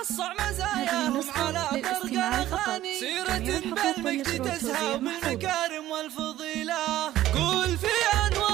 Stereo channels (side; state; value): left; quieter; 14.0 dB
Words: مزاياهم على طرق أغاني، سيرة بالمجد تزهى بالمكارم والفضيلة. قول في